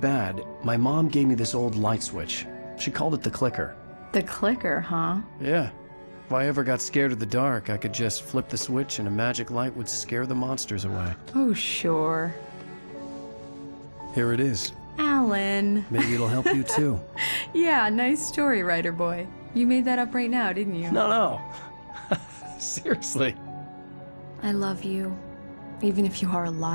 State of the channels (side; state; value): both; inverted; correlation -1.00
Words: my mom gave me this old light switch. She called it the clicker. The clicker, huh? Yeah. If I ever got scared of the dark, I could just flip the switch and a magic light would scare the monsters away. Oh, sure. Here it is. Alan. Maybe it'll help you, too. Yeah, nice story, writer boy. You made that up right now, didn't you? No. Seriously. I love you, even if you are a